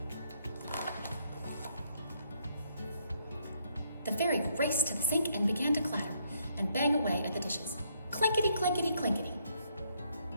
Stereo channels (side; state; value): both; inverted; correlation -0.72